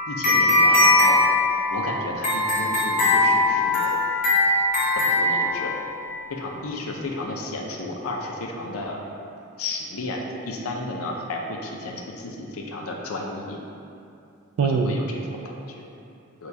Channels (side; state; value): both; normal; correlation -0.08